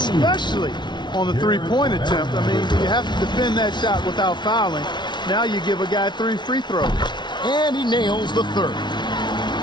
on the three-point attempt. I mean, you have to defend that shot without fouling. Now you give a guy 3 free throws. And he nails the third.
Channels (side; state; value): right; late; 0.21 ms